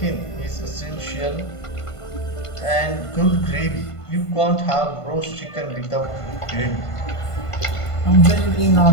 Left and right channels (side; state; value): right; late; 1.5 ms